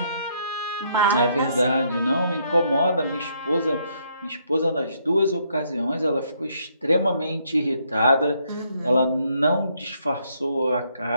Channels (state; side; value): inverted; both; correlation -0.71